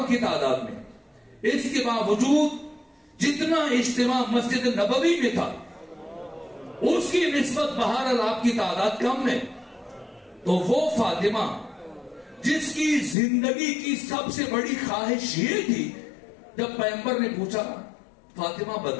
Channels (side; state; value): right; drops out; at 13.2 s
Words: کی تعداد میں. اس کے باوجود جتنا اجتماع مسجد نبوی میں تھا اس کی نسبت بہرحال آپ کی تعداد کم ہے. تو وہ فاطمہ جس کی زندگی کی سب سے بڑی خواہش یہ تھی، جب پیغمبر نے پوچھا فاطمہ